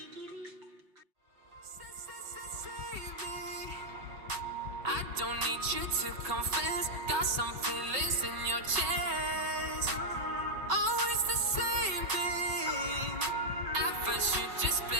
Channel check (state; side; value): late; left; 5.3 ms